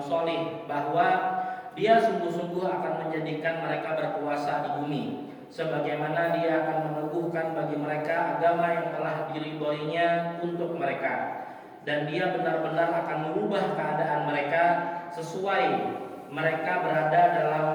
soleh bahwa Dia sungguh-sungguh akan menjadikan mereka berkuasa di bumi, sebagaimana Dia akan meneguhkan bagi mereka agama yang telah diridhoinya untuk mereka, dan Dia benar-benar akan merubah keadaan mereka sesudah mereka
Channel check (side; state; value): both; identical; correlation 1.00